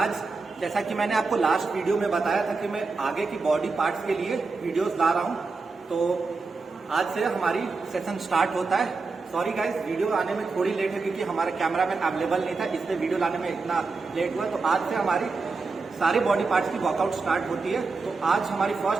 जैसा कि मैंने आपको लास्ट वीडियो में बताया था कि मैं आगे की बॉडी पार्ट्स के लिए वीडियोस ला रहा हूं, तो आज से हमारी सेशन स्टार्ट होता है। सॉरी गाइस, वीडियो आने में थोड़ी लेट है क्योंकि हमारा कैमरामैन अवेलेबल नहीं था, इसलिए वीडियो लाने में इतना लेट हुआ। तो आज से हमारी सारी बॉडी पार्ट्स की वर्कआउट स्टार्ट होती है। तो आज हमारी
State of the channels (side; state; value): left; quieter; 4.2 dB